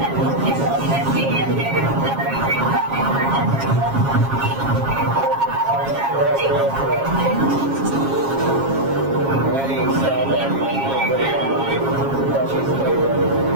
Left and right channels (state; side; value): late; left; 7.4 ms